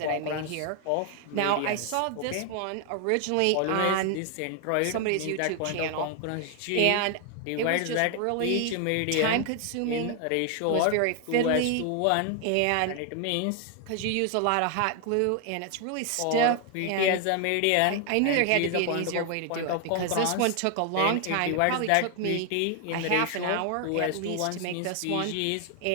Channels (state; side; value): different; both; correlation 0.00